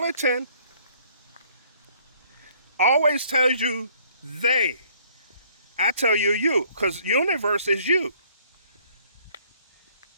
always tells you they. I tell you you, because universe is you.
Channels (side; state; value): both; inverted; correlation -0.60